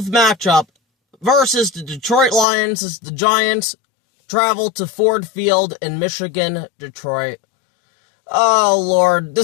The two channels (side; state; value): right; drops out; at 2.5 s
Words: matchup versus the Detroit Lions as the Giants travel to Ford Field in Michigan, Detroit. Oh lord,